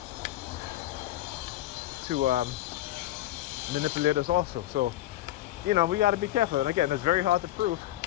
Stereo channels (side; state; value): right; quieter; 14.5 dB